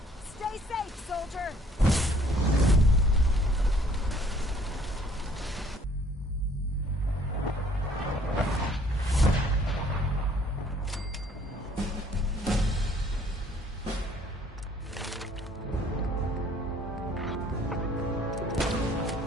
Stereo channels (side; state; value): both; normal; correlation 0.58